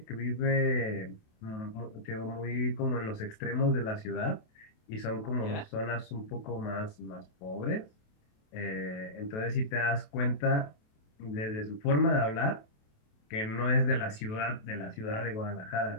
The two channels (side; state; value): right; late; 28 ms